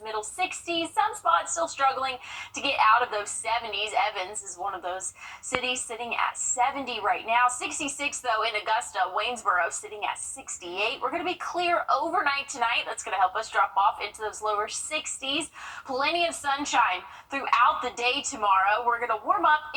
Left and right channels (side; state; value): both; identical; correlation 1.00